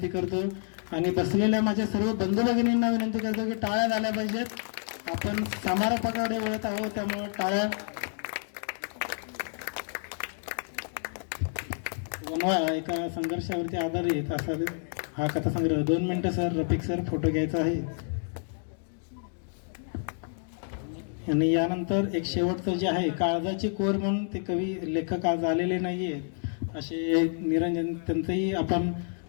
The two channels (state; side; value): silent; right; 59 dB below the other